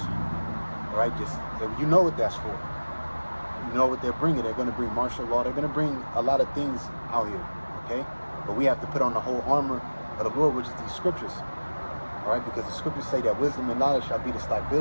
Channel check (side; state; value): both; inverted; correlation -1.00